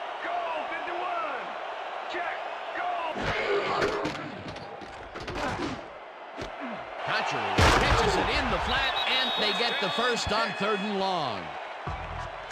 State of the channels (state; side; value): identical; both; correlation 1.00